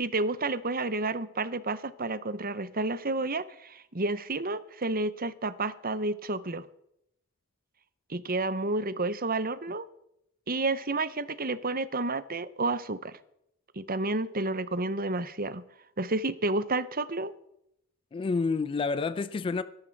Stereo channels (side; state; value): both; normal; correlation 0.11